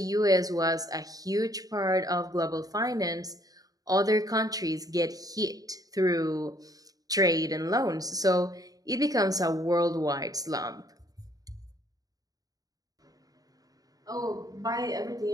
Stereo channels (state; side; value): late; left; 0.18 ms